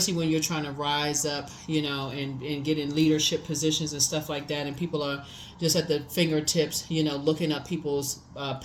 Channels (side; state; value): both; identical; correlation 1.00